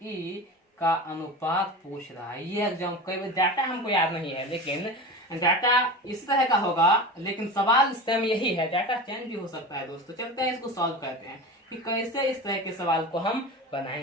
का अनुपात पूछ रहा है। ये एग्जाम कई बार डाटा हमको याद नहीं है, लेकिन डाटा इस तरह का होगा, लेकिन सवाल सेम यही है, डाटा चेंज भी हो सकता है दोस्तों। चलते हैं इसको सॉल्व करते हैं कि कैसे इस तरह के सवाल को हम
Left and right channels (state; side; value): normal; both; correlation 0.30